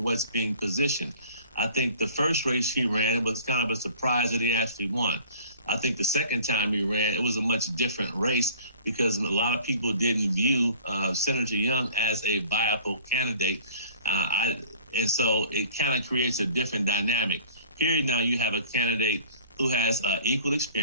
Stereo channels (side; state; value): both; inverted; correlation -0.49